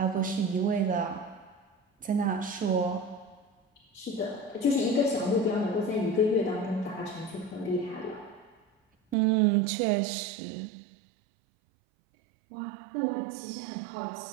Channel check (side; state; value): left; drops out; at 9.2 s